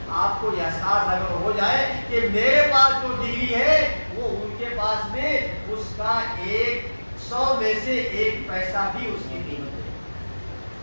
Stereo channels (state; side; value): inverted; both; correlation -1.00